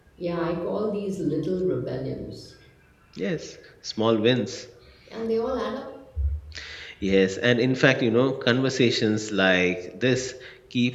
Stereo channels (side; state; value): both; identical; correlation 1.00